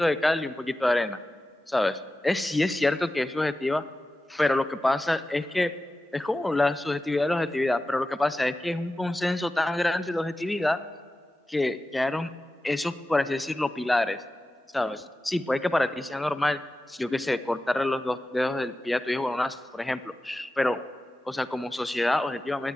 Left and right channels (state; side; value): normal; both; correlation 0.93